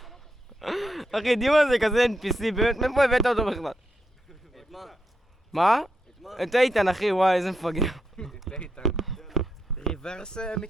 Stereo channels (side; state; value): both; normal; correlation 0.83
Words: אחי, דימה זה כזה NPC, באמת, מאיפה הבאת אותו בכלל? את מה? מה? את איתן אחי, וואי, איזה מפגר. את איתן. ריברס